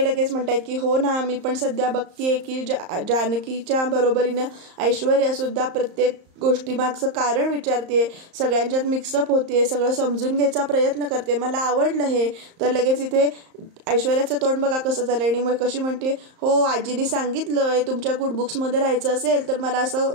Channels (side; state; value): left; late; 34 ms